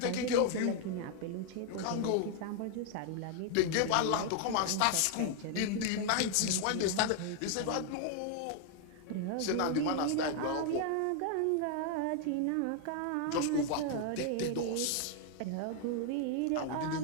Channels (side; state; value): both; different; correlation 0.00